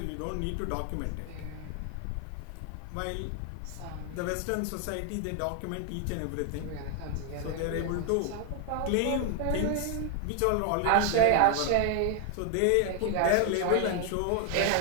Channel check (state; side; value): different; both; correlation 0.00